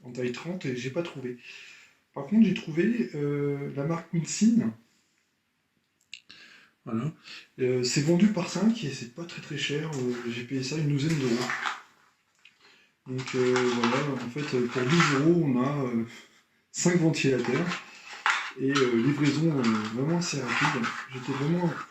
taille 30 et j'ai pas trouvé. Par contre, j'ai trouvé la marque Winsin. Voilà. C'est vendu par 5 et c'est pas très très cher. J'ai payé ça une douzaine d'euros. Donc voilà, en fait, pour 12 euros, on a 5 ventilateurs et livraison vraiment assez rapide. J'étais vraiment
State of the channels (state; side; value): identical; both; correlation 1.00